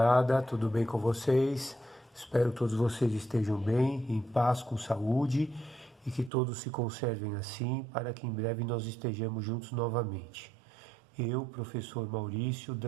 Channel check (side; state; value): left; drops out; at 6.3 s